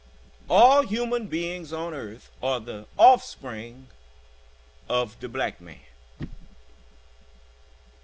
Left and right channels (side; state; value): both; identical; correlation 1.00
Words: All human beings on earth are the offspring of the black man.